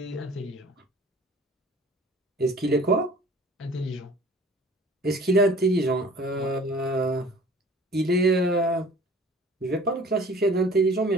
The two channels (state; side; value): normal; both; correlation 0.48